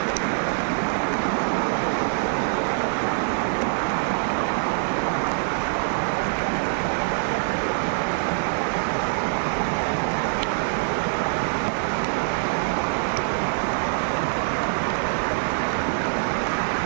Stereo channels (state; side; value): silent; left; 62 dB below the other